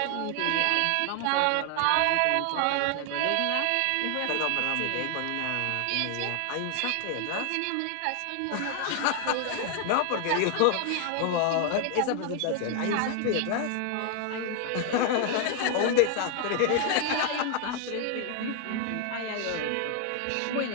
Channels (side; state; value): both; different; correlation 0.00